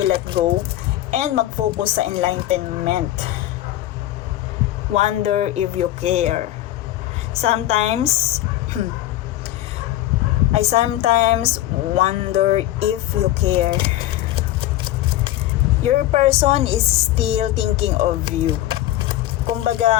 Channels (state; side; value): quieter; right; 14.5 dB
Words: go and mag-focus sa enlightenment. Wonder if you care. Sometimes I sometimes wonder if you care. Your person is still thinking of you.